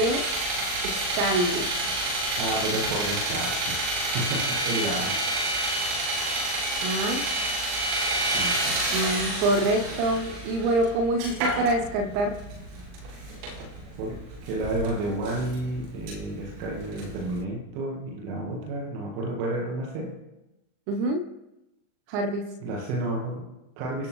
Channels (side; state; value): left; late; 39 ms